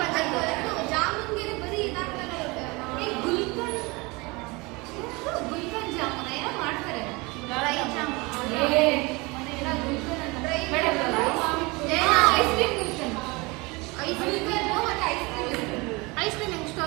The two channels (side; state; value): left; quieter; 25.4 dB